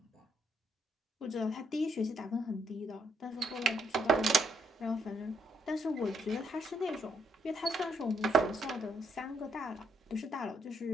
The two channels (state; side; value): normal; both; correlation 0.74